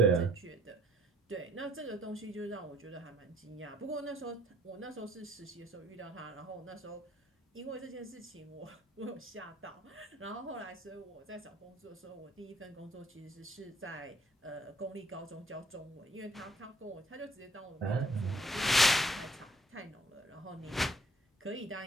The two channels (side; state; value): both; normal; correlation 0.61